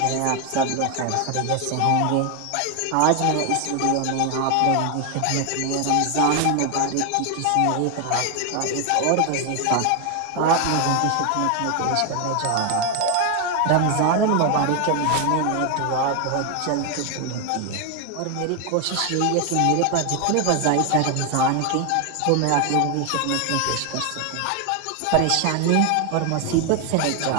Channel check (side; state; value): both; different; correlation 0.01